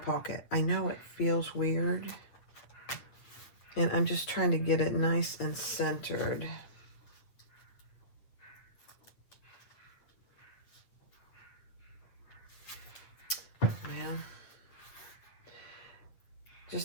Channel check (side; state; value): right; late; 8.2 ms